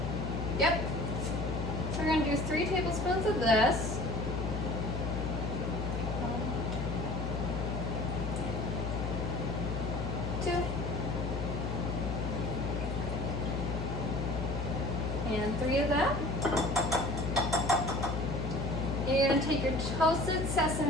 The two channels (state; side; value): noise; left; hum, 3 dB below the sound